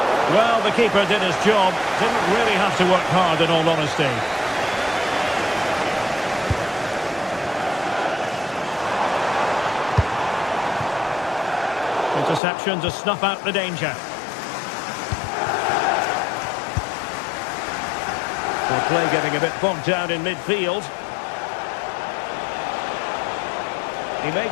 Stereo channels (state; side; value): drops out; right; at 12.4 s